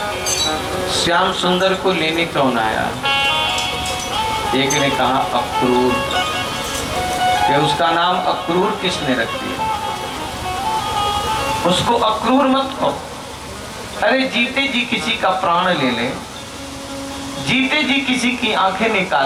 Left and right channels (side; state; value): both; identical; correlation 1.00